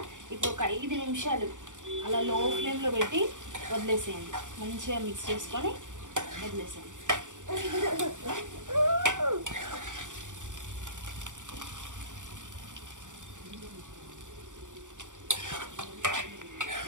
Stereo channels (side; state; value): left; late; 0.86 ms